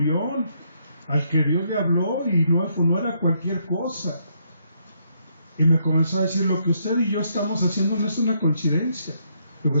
al que Dios le habló y no era cualquier cosa. Y me comenzó a decir: lo que usted y yo estamos haciendo no es una coincidencia. Digo:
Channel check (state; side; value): inverted; both; correlation -0.74